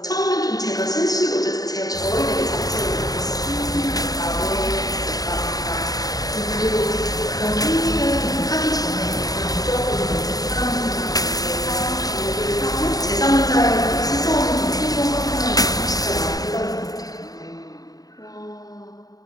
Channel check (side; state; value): right; late; 0.18 ms